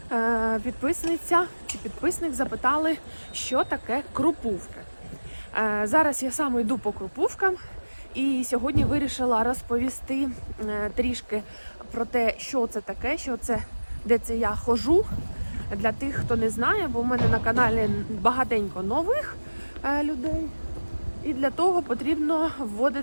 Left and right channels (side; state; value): both; inverted; correlation -1.00